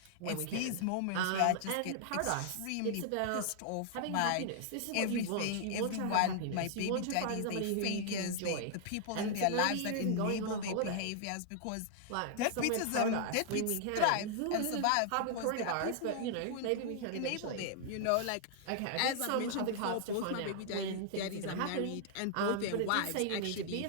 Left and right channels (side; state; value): both; different; correlation -0.01